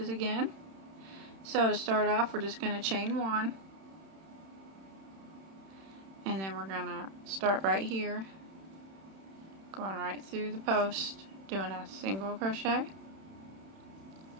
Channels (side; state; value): left; late; 31 ms